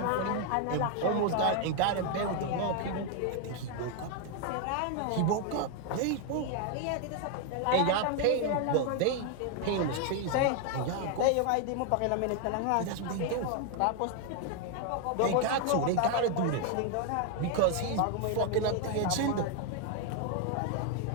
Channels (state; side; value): different; both; correlation 0.01